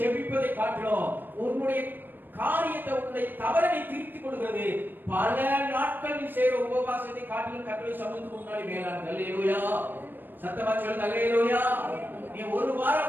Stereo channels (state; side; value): late; left; 0.093 ms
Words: காட்டிலும் உன்னுடைய காரியத்தை உன்னுடைய தவறை நீ திருத்திக் கொள்கிறது பல நாட்கள் நீ செய்கிற உபவாசத்தை காட்டிலும் கர்த்தருடைய சமூகத்துக்கு முன்னாடி மேலானது. அல்லேலூயா. சத்தமா சொல்லுங்க அல்லேலூயா. நீ ஒரு